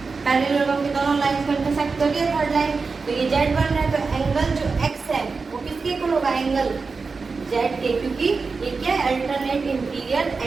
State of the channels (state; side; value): quieter; left; 4.5 dB